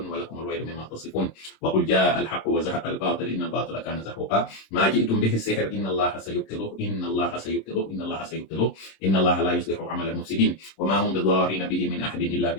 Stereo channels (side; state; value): right; late; 26 ms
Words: الويل مما تصفون وقل جاء الحق وزهق الباطل إن الباطل كان زهوقا ما جئتم به السحر إن الله سيبطله إن الله سيبطله إن الله سيبطله إن الله لا يصلح عمل المفسدين وما هم بضارين به من أحد إلا